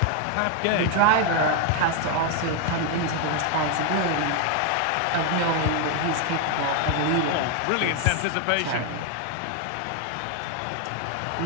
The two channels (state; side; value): different; both; correlation 0.01